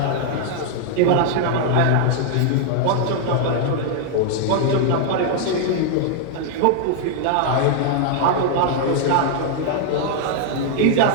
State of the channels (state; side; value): different; both; correlation 0.00